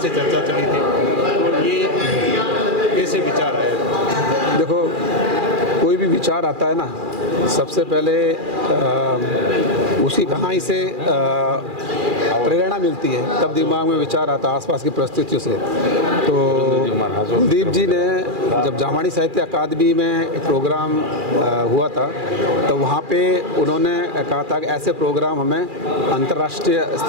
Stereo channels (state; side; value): late; left; 2.4 ms